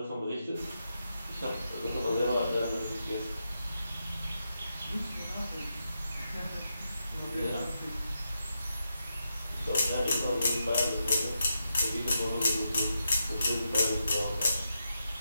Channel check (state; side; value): inverted; both; correlation -0.85